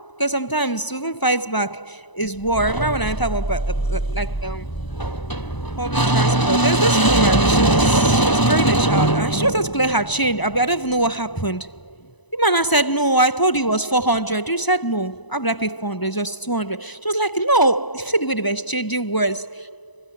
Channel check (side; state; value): right; late; 1.0 ms